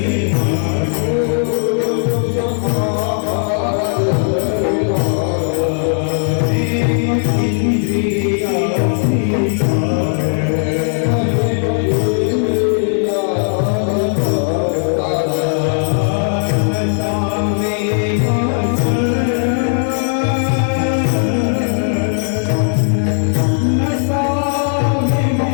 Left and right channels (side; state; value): right; silent; digital silence